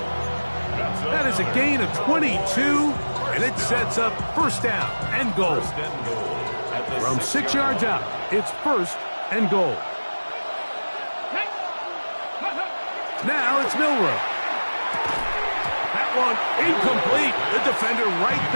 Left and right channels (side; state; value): both; inverted; correlation -1.00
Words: That is a gain of 22, and it sets up first down and goal. From 6 yards out, it's first and goal. Now it's Milrow. That one incomplete. The defender right